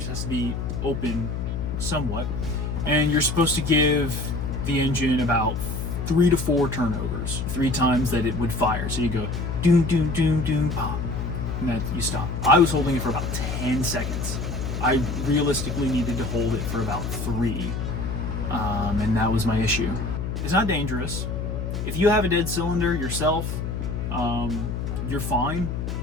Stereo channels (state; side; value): noise; left; hum, 3 dB below the sound